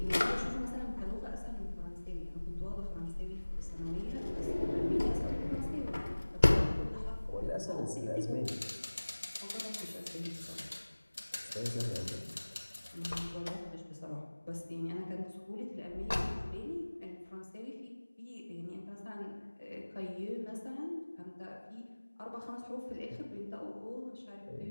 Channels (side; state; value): both; inverted; correlation -1.00